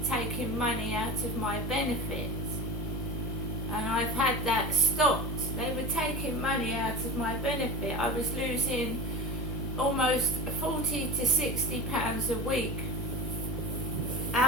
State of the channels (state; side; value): noise; left; hum, 5 dB below the sound